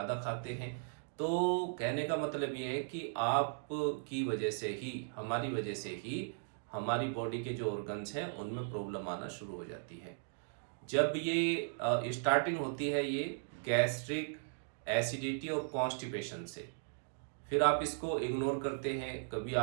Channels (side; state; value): left; silent; digital silence